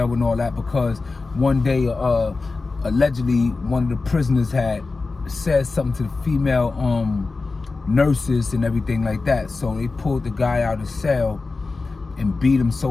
and all that, because one day, allegedly, one of the prisoners had said something to the female nurses and everything like that. So they pulled the guy out of the cell and beat him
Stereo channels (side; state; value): right; quieter; 3.8 dB